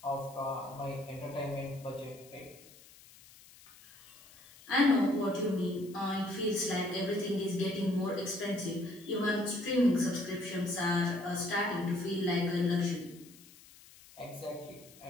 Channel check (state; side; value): noise; left; hiss, 22 dB below the sound